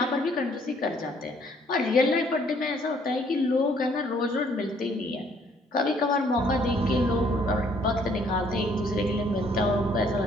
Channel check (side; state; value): both; normal; correlation 0.64